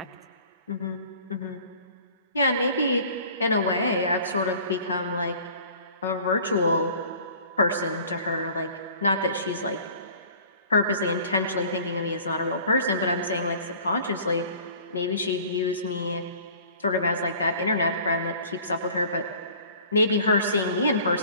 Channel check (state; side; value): inverted; both; correlation -0.49